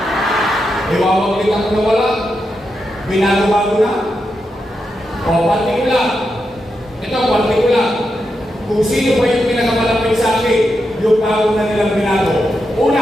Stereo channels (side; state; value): both; normal; correlation 0.86